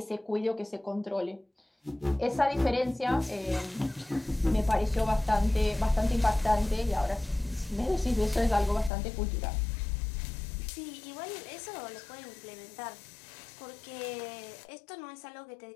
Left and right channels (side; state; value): right; drops out; at 8.9 s